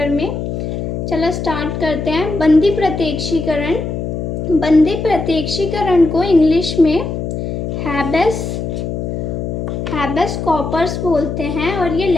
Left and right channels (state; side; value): noise; left; hum, 4 dB below the sound